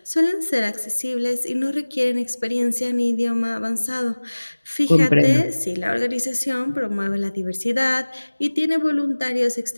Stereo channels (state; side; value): inverted; both; correlation -1.00